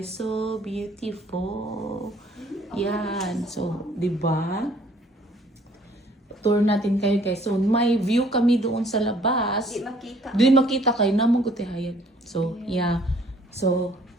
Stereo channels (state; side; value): normal; both; correlation 0.59